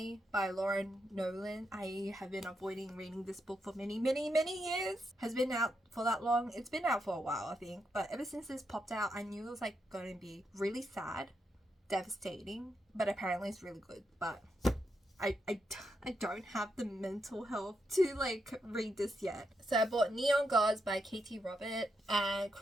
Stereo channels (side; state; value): both; normal; correlation 0.83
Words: by Laura Nowlin. I have been avoiding reading this book for many years. Has been out for that long. It's been out for a while, I think, but ever since this popped out, I knew it was like going to be really sad, devastating, but apparently it's really good. But I don't have the mental health to like read this yet. So I bought Neon Gods by Katee and